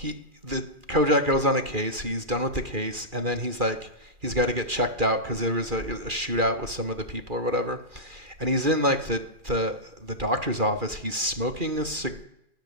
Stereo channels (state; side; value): late; left; 2.4 ms